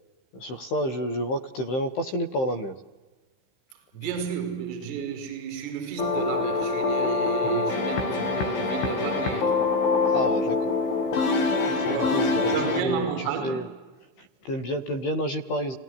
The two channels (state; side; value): late; right; 15 ms